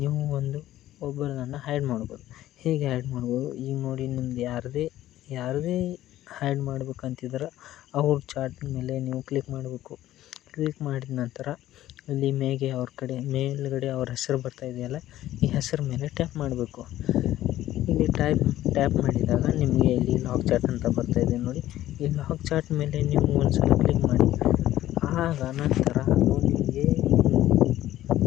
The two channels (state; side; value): quieter; right; 14.0 dB